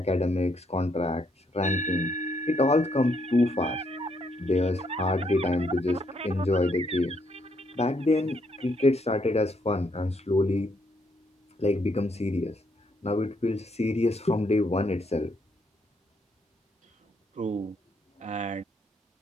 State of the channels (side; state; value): both; normal; correlation 0.74